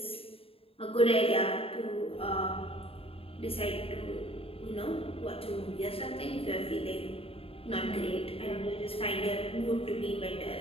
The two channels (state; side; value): late; right; 0.27 ms